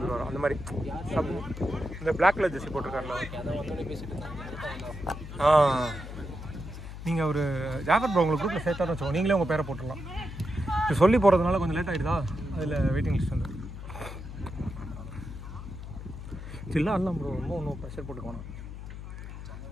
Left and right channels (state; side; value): noise; left; hum, 10 dB below the sound